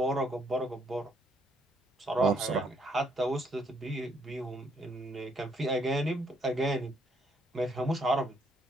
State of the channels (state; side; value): normal; both; correlation 0.70